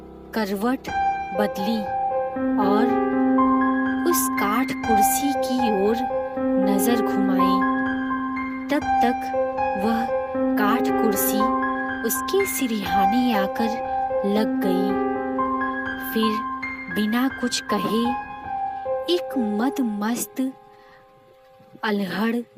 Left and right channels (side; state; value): both; identical; correlation 1.00